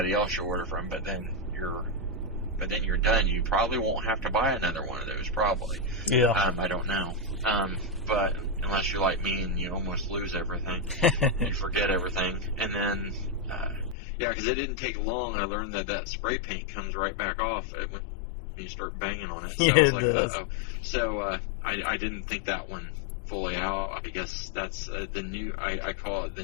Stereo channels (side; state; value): right; drops out; at 14.0 s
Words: else you order from, but then you're done. You probably won't have to buy another one of those, probably. Yeah. I don't know. But unless you're like me and you almost lose everything, you forget everything. And then, yeah, because it didn't take long. I learned that spray paint comes right back off when you start banging on it. So I was like, uh-oh. So I didn't think that one fully out. I guess that's the new, I call it the